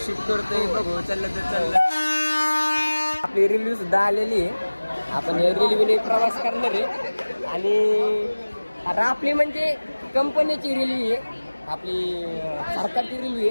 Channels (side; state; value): both; inverted; correlation -1.00